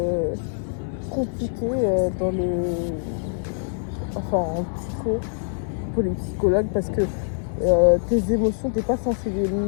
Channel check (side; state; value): right; silent; 60 dB below the other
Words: compliqué en psycho, pour les psychologues, parce que tes émotions, t'es pas censé les